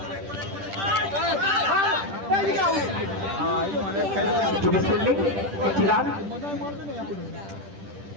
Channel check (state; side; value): late; left; 10 ms